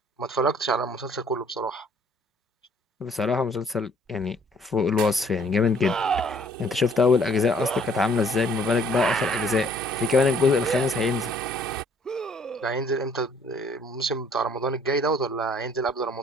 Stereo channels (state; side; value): normal; both; correlation 0.60